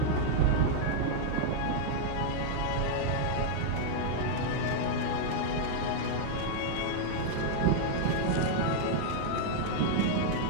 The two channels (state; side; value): different; both; correlation -0.01